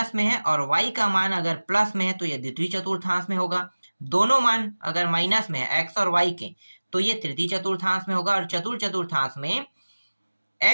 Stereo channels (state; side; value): inverted; both; correlation -1.00